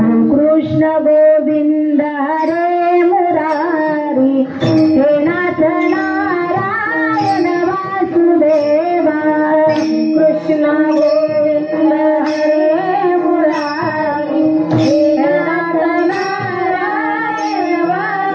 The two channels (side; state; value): both; identical; correlation 1.00